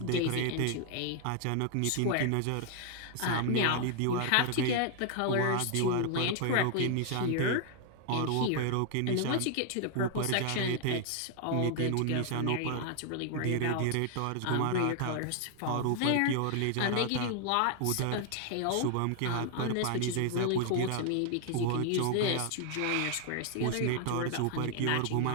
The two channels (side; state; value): both; different; correlation 0.00